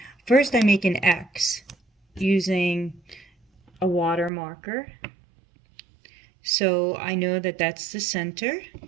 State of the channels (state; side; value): drops out; left; at 4.3 s